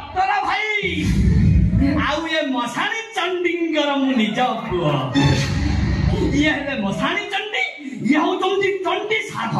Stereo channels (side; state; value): both; identical; correlation 1.00